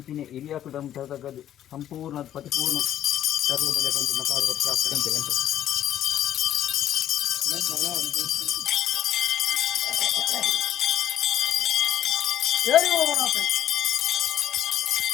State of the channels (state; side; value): quieter; right; 11.2 dB